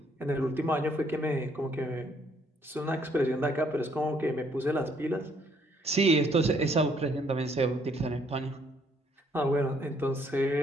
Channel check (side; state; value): both; normal; correlation 0.67